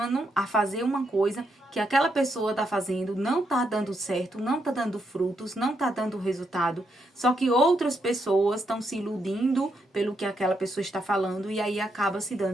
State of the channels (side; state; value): both; normal; correlation 0.79